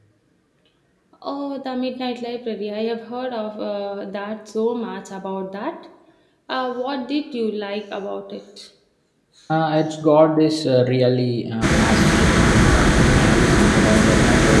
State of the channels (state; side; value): identical; both; correlation 1.00